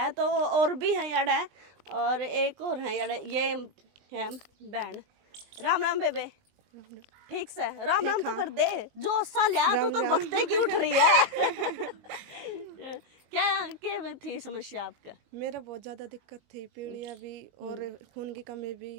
तो और भी है यार है, और एक और है यार, ये है बहन। राम राम बेबे, ठीक से? राम राम तो कर दे, जो सा लिया तो बखते की उठ रही है। क्या थी समस्या आपका? मेरा बहुत ज़्यादा दिक्कत थी, पीलिया भी और खून की कमी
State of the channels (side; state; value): left; late; 20 ms